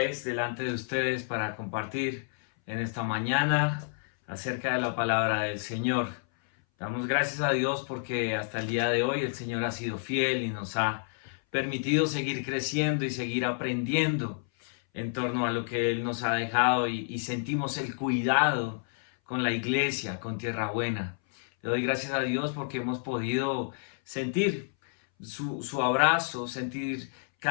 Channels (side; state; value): right; silent; 58 dB below the other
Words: delante de ustedes para compartir en esta mañana acerca de la palabra del Señor. Damos gracias a Dios porque hasta el día de hoy el Señor ha sido fiel y nos ha permitido seguir creciendo y seguir aprendiendo en torno a lo que Él nos ha dejado y sentimos el cuidado con la iglesia, con Tierra Buena. Le doy gracias a Dios porque hemos podido sentir su abrazo, sentir